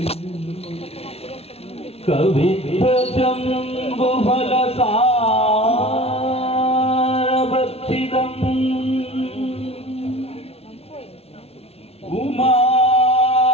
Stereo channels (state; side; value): late; right; 0.30 ms